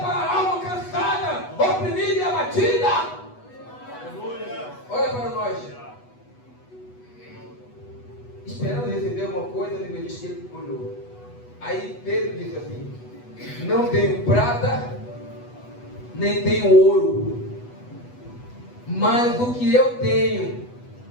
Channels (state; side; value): late; right; 8.1 ms